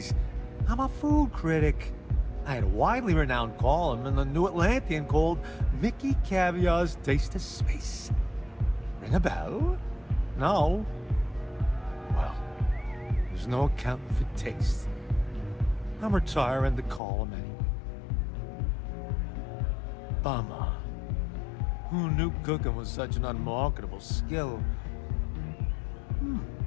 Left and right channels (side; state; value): right; drops out; at 17.0 s